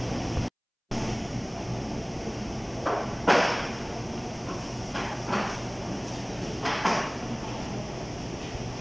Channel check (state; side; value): identical; both; correlation 1.00